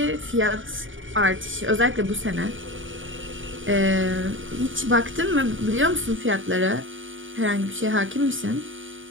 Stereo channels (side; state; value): left; late; 0.57 ms